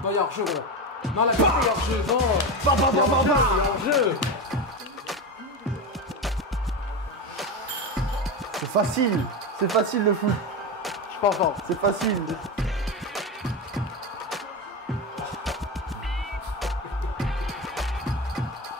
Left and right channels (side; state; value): both; normal; correlation 0.18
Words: Non, il y a hors jeu, gros. Non, la vérité, il y a hors jeu. Non. Il y a hors jeu. C'est facile le foot. Je suis pas fort, c'est facile.